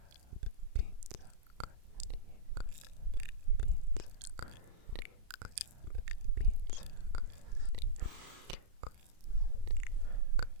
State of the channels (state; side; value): late; left; 33 ms